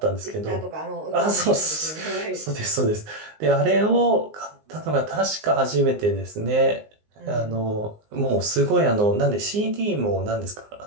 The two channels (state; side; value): late; left; 19 ms